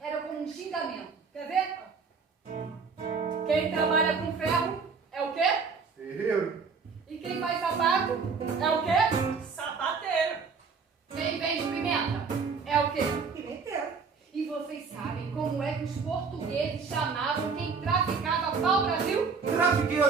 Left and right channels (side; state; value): left; quieter; 5.3 dB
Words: era como um xingamento. Quer ver? Quem trabalha com ferro é o quê? Ferreiro. E quem faz sapato é o quê? Sapateiro. Quem vende pimenta é o quê? Pimenteiro. E vocês sabem como é que os portugueses chamavam quem traficava pau-brasil?